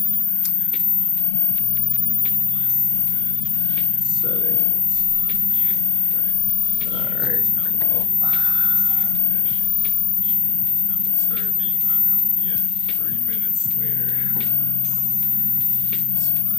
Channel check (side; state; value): right; quieter; 7.6 dB